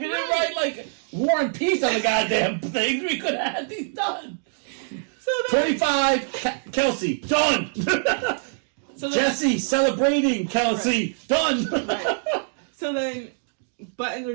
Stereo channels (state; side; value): silent; left; digital silence